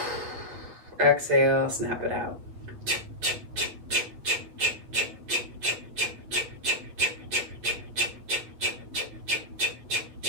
Exhale, snap it out.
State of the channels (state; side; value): late; left; 8.8 ms